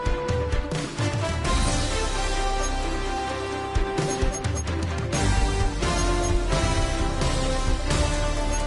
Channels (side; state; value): both; identical; correlation 1.00